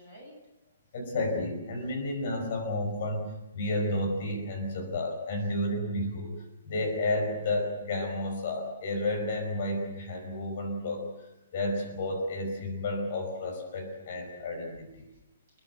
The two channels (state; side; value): inverted; both; correlation -0.56